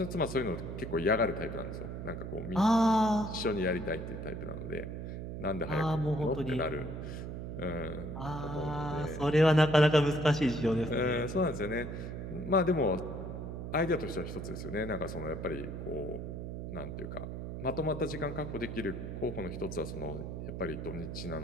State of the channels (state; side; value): noise; right; hum, 6 dB below the sound